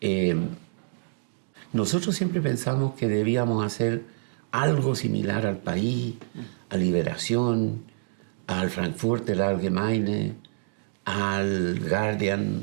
Nosotros siempre pensamos que debíamos hacer algo similar al País, a Liberación, al Frankfurter Allgemeine, al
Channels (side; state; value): left; silent; digital silence